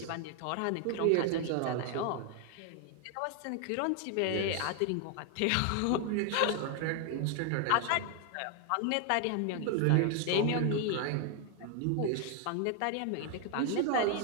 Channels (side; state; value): both; different; correlation 0.00